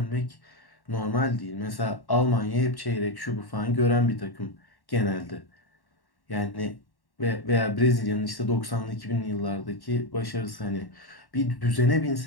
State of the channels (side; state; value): right; late; 1.1 ms